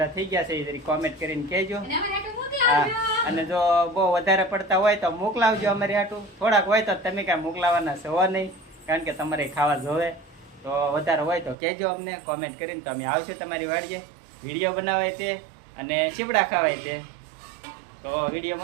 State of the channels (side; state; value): left; drops out; at 11.6 s